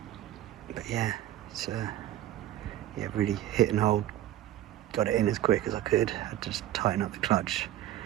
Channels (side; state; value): left; quieter; 13.0 dB